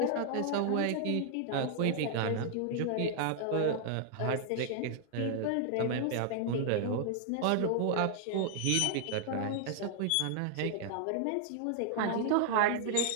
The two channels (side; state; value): both; different; correlation 0.00